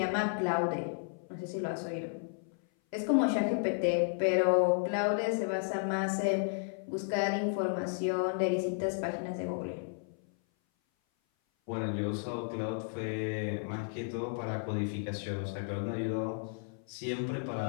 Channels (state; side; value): silent; right; 56 dB below the other